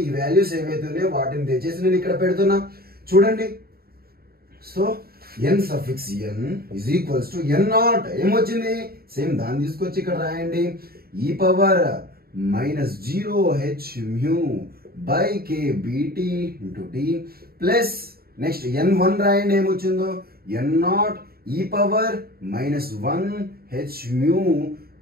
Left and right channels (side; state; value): left; late; 0.44 ms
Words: ఈ వాల్యూస్ ఏవైతే ఉన్నాయో వాటిని తెచ్చేసి నేను ఇక్కడ పెడుతున్నా. చూడండి, so n suffix n is equals to n0 ఏమొచ్చింది? సేమ్ దాన్ని తీసుకొచ్చి ఇక్కడ రాయండి. e power -0 h mu by k bt into t plus next n1 రాయండి. ఏమొచ్చిందో? n0 e power -1 h mu